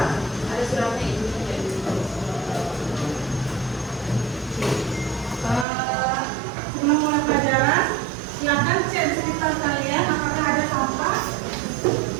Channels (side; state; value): left; drops out; at 5.7 s